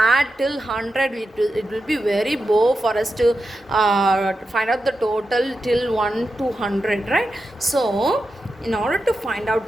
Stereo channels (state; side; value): normal; both; correlation 0.89